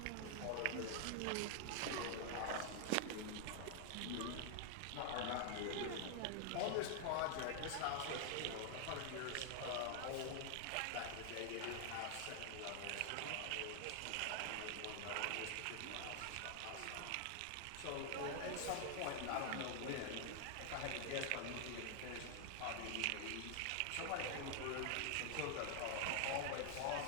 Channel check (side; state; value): both; different; correlation 0.00